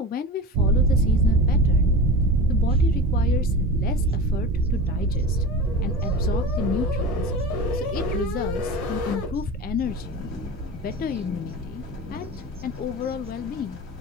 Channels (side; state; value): both; normal; correlation 0.31